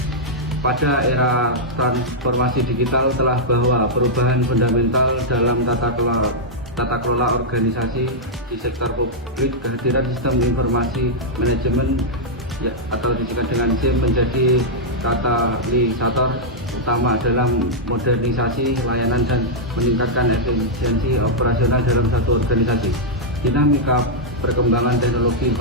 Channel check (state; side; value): normal; both; correlation -0.07